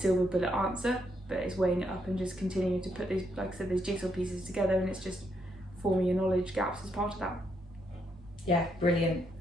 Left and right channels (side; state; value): both; normal; correlation 0.77